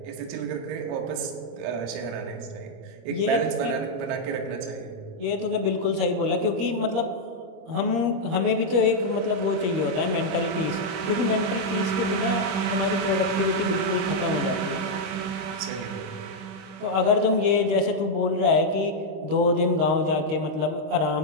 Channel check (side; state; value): left; late; 26 ms